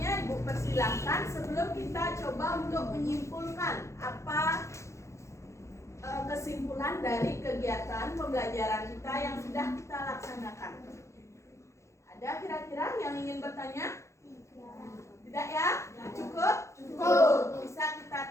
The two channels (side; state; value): right; late; 0.14 ms